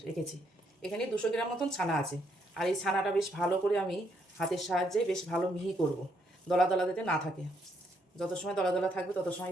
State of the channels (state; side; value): normal; both; correlation 0.74